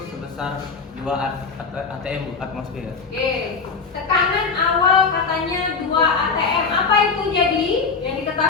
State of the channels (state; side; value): quieter; right; 4.9 dB